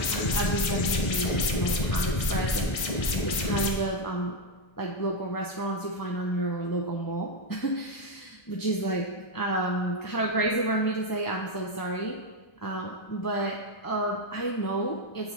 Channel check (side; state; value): right; late; 1.6 ms